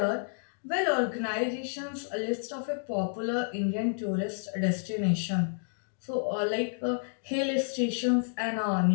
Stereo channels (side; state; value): right; silent; digital silence